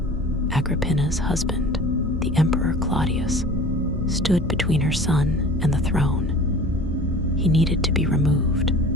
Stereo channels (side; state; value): both; normal; correlation 0.42